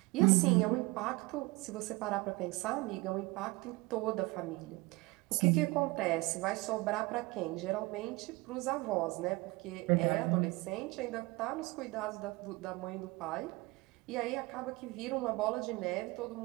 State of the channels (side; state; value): left; quieter; 23.3 dB